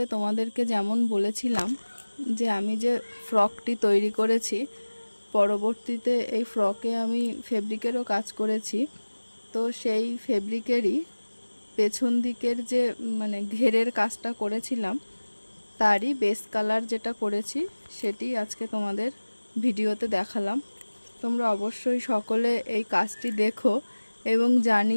তোমাদেরকে যেমন বলেছিলাম যে আমি যে ফ্রকটি তৈরি করেছি, পরবর্তীতে এই ফ্রকে আমি ফেব্রিকেরও কাজ করেছি। তো সেই ফেব্রিকেরই পেছন দিকের যে ঘেরের কাজটা করেছিলাম, তারই বেস কালার যেটা করেছি সেটি আজকে তোমাদের ভিডিওতে দেখালাম। তোমরা অবশ্যই সকলে এই কাজটি দেখো এবং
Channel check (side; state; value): both; inverted; correlation -1.00